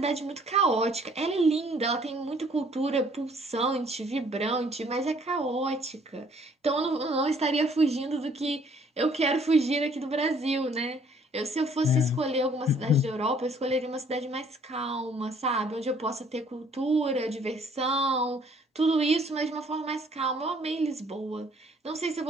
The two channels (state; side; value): normal; both; correlation 0.60